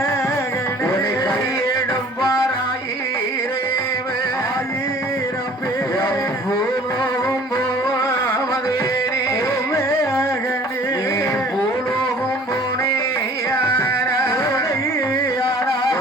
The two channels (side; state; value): both; normal; correlation 0.50